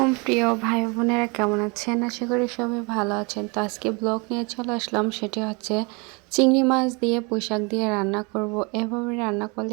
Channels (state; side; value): quieter; left; 29.9 dB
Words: প্রিয় ভাই বোনেরা, কেমন আছেন? আশা করি সবাই ভালো আছেন। তো আজকে ব্লগ নিয়ে চলে আসলাম, সেটি হচ্ছে চিংড়ি মাছ দিয়ে পুঁইশাক দিয়ে রান্না করব। এভাবে রান্না